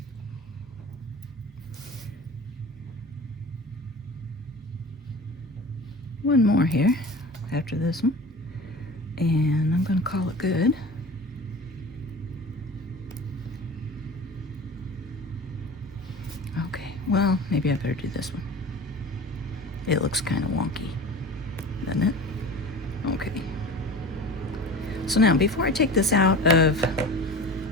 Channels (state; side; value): normal; both; correlation 0.36